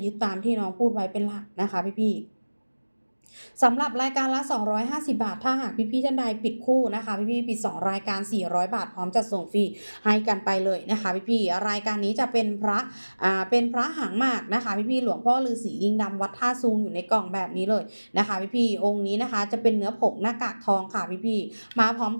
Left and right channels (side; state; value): both; inverted; correlation -1.00